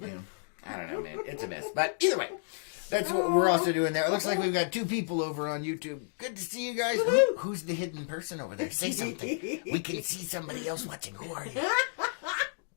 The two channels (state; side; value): silent; right; digital silence